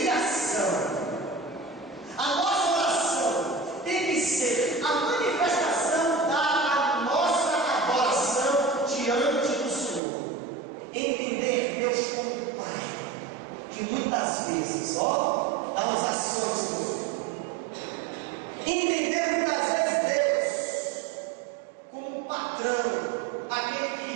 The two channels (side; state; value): left; drops out; at 10.0 s